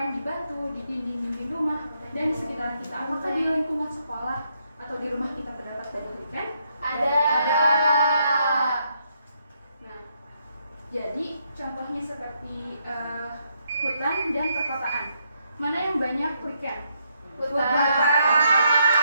di batu, di dinding-dinding rumah, dan di sekitar kita. Apakah di lingkungan sekolah atau di rumah kita terdapat banyak lichen? Ada. Nah, jadi contohnya seperti hutan dan perkotaan. Mana yang banyak lichen? Hutan.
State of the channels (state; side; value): inverted; both; correlation -0.76